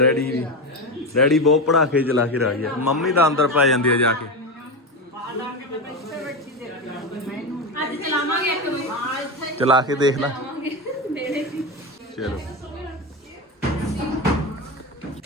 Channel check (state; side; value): normal; both; correlation 0.17